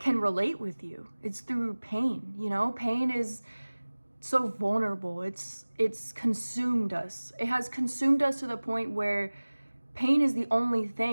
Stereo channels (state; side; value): inverted; both; correlation -1.00